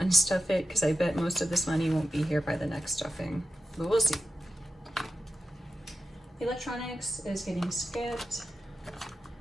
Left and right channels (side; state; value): both; normal; correlation 0.91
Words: it because I bet most of this money won't be here by the next stuffing, but we'll see. Electronics is getting skipped.